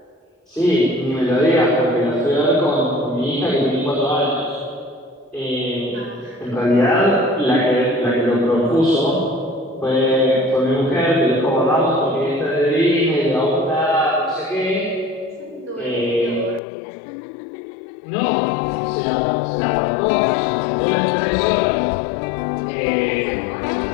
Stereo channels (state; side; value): drops out; right; at 16.6 s